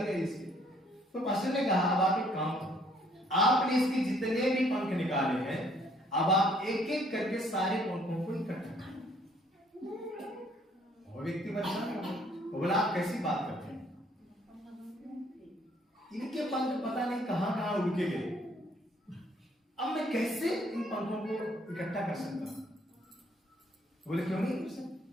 गए इसके। तो पास्टर ने कहा अब आप एक काम करो, आपने इसके जितने भी पंख निकाले हैं, अब आप एक एक करके सारे पंखों को इकट्ठा करें। वो व्यक्ति परेशान हो, वो बोला आप कैसी बात करते हैं, इनके पंख पता नहीं कहां कहां उड़ के गए, अब मैं कैसे इन पंखों को इकट्ठा कर सकता हूं? बोले क्यों नहीं हो सकता?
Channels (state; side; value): normal; both; correlation 0.63